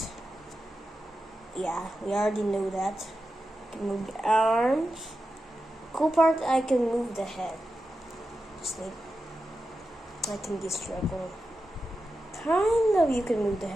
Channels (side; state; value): both; normal; correlation 0.91